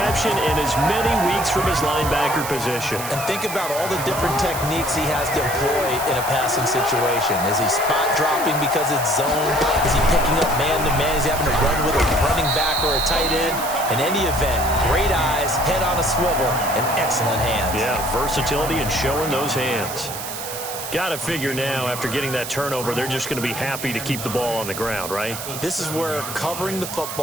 in as many weeks from his linebacker position. And think about all the different techniques he has to employ in a passing situation. Is he spot dropping because it's zone? Is he picking up man-to-man? Is he having to run with a running back or a tight end? In any event, great eyes, head on a swivel, and excellent hands. Yeah, versatility and showing those hands. Got to figure now, after getting that turnover, they're just going to be happy to keep the ball on the ground, right? This is where covering the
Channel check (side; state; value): right; noise; hiss, 8 dB below the sound